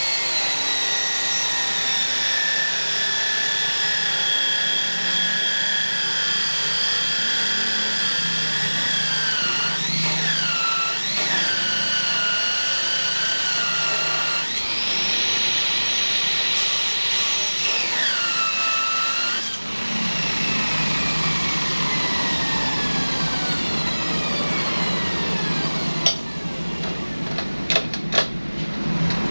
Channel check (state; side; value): inverted; both; correlation -1.00